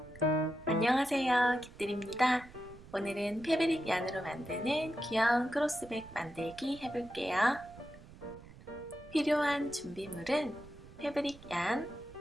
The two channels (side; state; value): right; noise; rumble, 19 dB below the sound